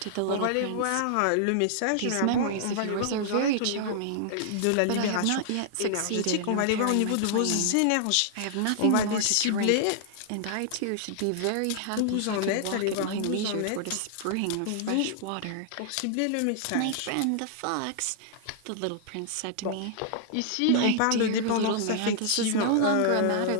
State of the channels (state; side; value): different; both; correlation -0.01